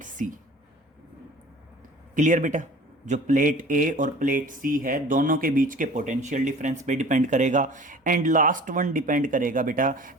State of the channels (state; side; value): normal; both; correlation 0.44